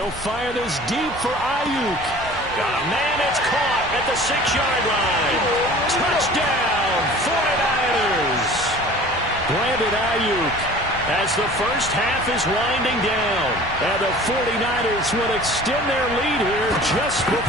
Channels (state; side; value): normal; both; correlation 0.44